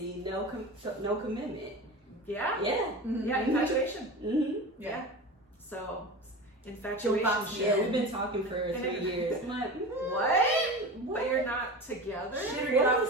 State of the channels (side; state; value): both; normal; correlation 0.30